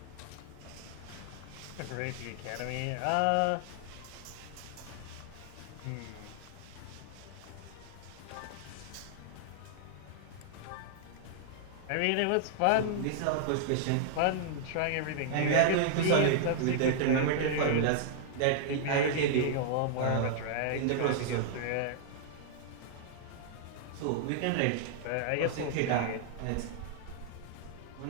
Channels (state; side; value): different; both; correlation -0.01